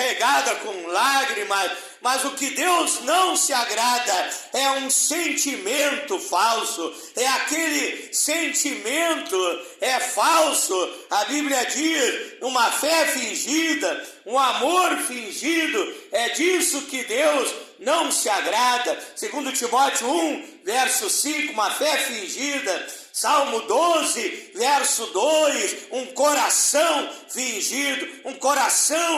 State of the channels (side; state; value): both; identical; correlation 1.00